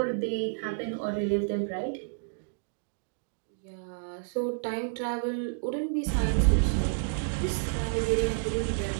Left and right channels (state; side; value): silent; left; digital silence